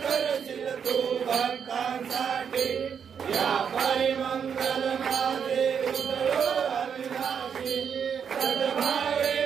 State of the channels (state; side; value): quieter; left; 7.3 dB